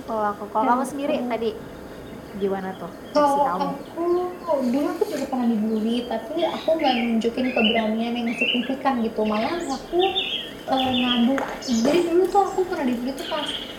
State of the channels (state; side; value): identical; both; correlation 1.00